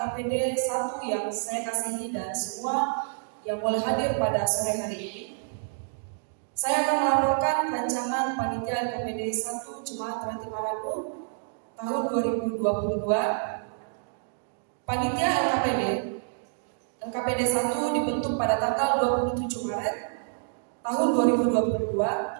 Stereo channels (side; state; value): left; silent; digital silence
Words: 1 yang saya kasihi dan semua yang boleh hadir pada sore hari ini. Saya akan melaporkan rancangan panitia LKPD 1 Jemaat Rantai Marang tahun 2022. Panitia LKPD 1 dibentuk pada tanggal 27 Maret tahun 2022